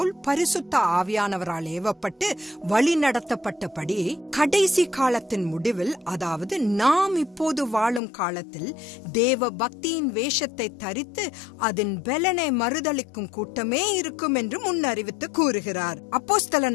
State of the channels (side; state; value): right; drops out; at 8.0 s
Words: பரிசுத்த ஆவியானவரால் ஏவப்பட்டு வழி நடத்தப்பட்டபடி கடைசி காலத்தின் முடிவில், அதாவது நாம் இப்போது வாழும் காலத்தில் தேவ பக்தியின் வேஷத்தை தரித்து அதன் பலனை மறுதளிக்கும் கூட்டமே இருக்கும் என்று முன்னறிவித்து கூறுகிறார்.